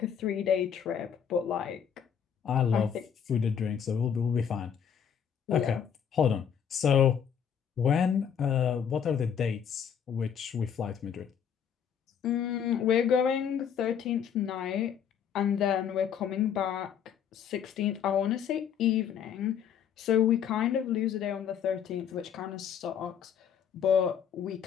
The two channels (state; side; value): quieter; right; 8.1 dB